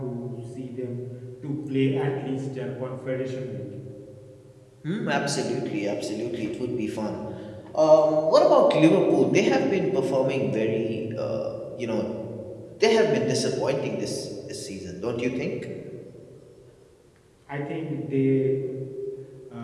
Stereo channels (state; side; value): identical; both; correlation 1.00